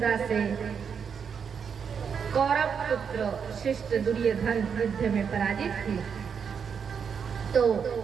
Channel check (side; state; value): left; quieter; 6.8 dB